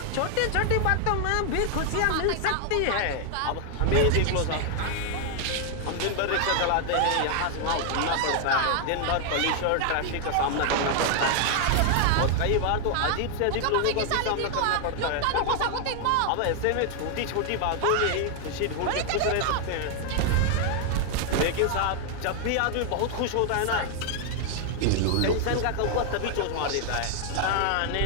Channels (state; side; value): different; both; correlation 0.00